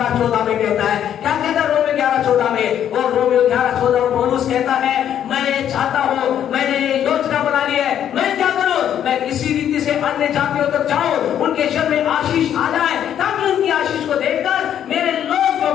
में कहता है। क्या कहता है रोमियो 11:14 में? और रोमियो 11:14 में पौलुस कहता है मैं चाहता हूं, मैंने योजना बना ली है, मैं क्या करूं? मैं किसी रीति से अन्य जातियों तक जाऊं, उनके जीवन में आशीष आ जाए, ताकि उनकी आशीष को देखकर मेरे लोग जो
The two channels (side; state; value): right; quieter; 9.9 dB